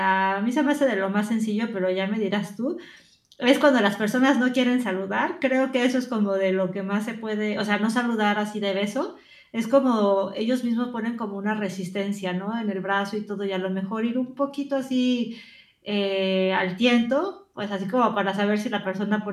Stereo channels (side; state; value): both; identical; correlation 1.00